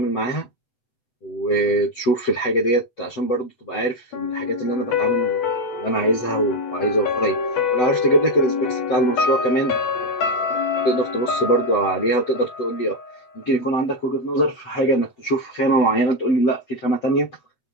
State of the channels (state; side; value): late; right; 8.1 ms